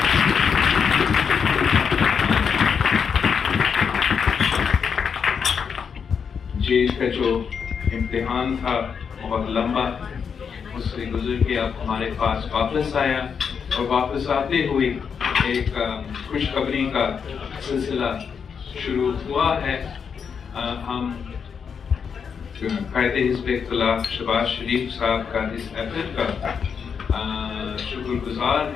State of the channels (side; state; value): right; quieter; 6.6 dB